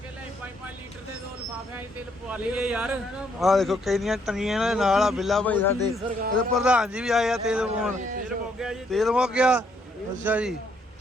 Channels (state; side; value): normal; both; correlation 0.71